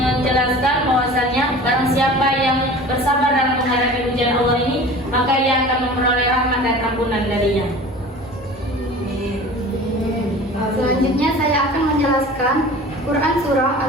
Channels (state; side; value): normal; both; correlation 0.40